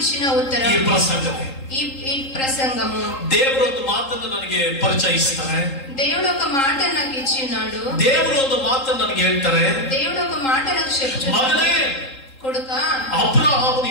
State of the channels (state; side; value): late; right; 3.8 ms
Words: ఉత్తరం ಈ ಪ್ರಸಂಗವೇ. ఈ ప్రసంగము. ದೇವರು ಒಂದು ಮಾತನ್ನು ನನಗೆ ಪರಿಚಯಿಸ್ತಾರೆ. దేవుడు ఒక మాట నాకు ఇచ్చినాడు. ದೇವರು ಒಂದು ಮಾತನ್ನು ನನಗೆ ಹೇಳ್ತಾರೆ, దేవుడు ఒక మాట నాకు చెప్తున్నాడు, ಮಗನೇ, ಕೊಡುಕ ಅಬ್ರಹಾಮನು